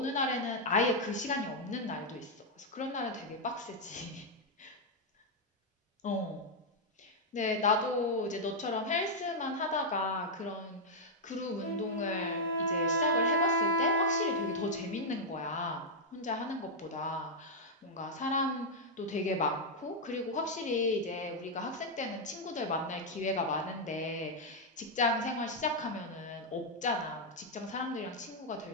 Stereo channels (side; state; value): both; normal; correlation -0.02